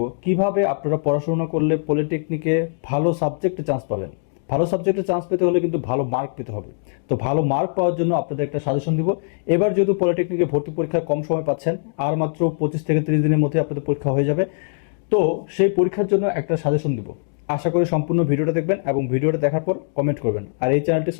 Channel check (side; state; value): right; silent; digital silence